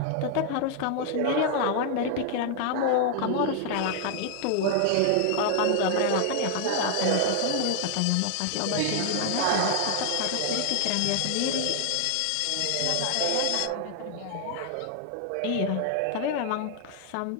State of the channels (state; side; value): different; both; correlation 0.00